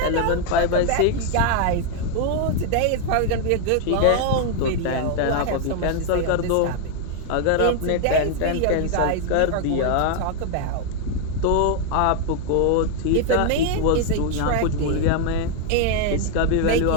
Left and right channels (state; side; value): different; both; correlation 0.00